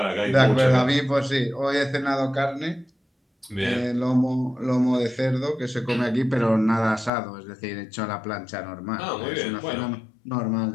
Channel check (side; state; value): right; drops out; at 7.1 s